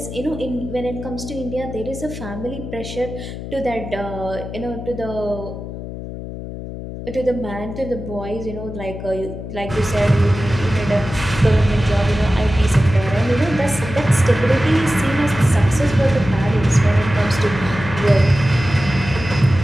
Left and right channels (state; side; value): noise; left; hum, 9 dB below the sound